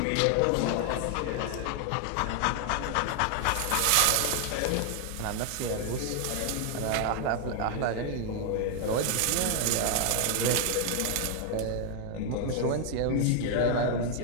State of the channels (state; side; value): different; both; correlation 0.00